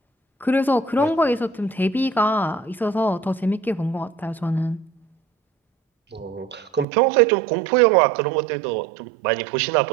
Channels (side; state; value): left; drops out; at 6.9 s